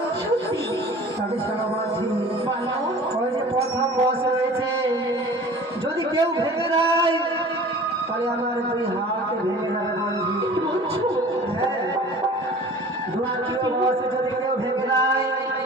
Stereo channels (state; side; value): normal; both; correlation 0.43